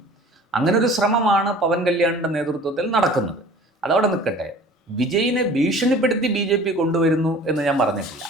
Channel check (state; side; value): normal; both; correlation 0.46